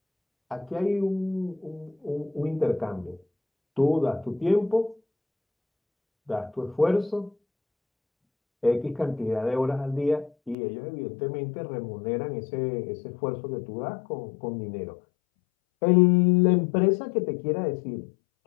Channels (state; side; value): drops out; right; at 10.6 s